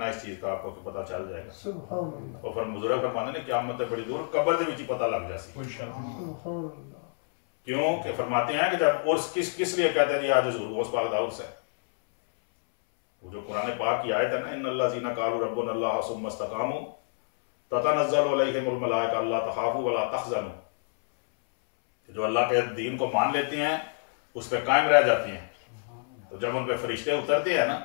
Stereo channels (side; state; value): right; silent; 59 dB below the other